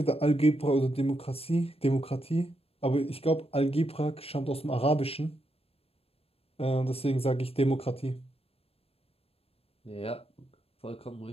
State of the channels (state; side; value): late; right; 0.28 ms